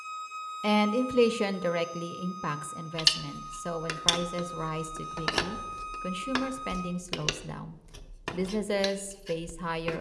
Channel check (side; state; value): both; identical; correlation 1.00